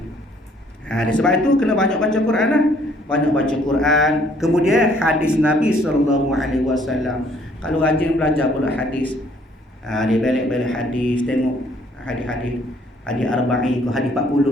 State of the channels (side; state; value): both; normal; correlation 0.62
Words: Sebab itu kena banyak baca Quran lah. Banyak baca Quran. Kemudian hadis Nabi SAW. Kalau rajin belajar pula hadis, dia balik-balik hadis, tengok hadis-hadis, hadis arba'in ke hadis